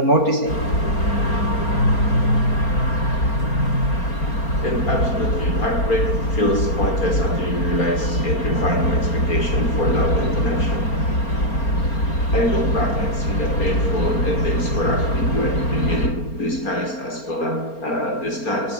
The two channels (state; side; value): late; right; 4.3 ms